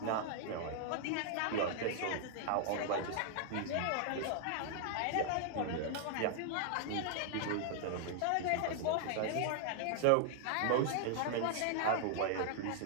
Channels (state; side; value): different; both; correlation 0.00